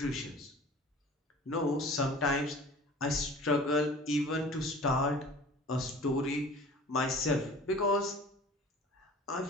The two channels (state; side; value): normal; both; correlation 0.44